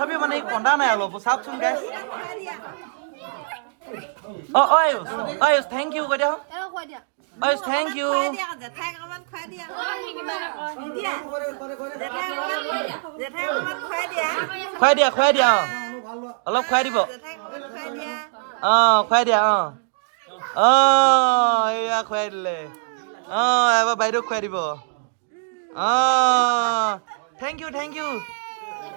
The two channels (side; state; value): left; silent; digital silence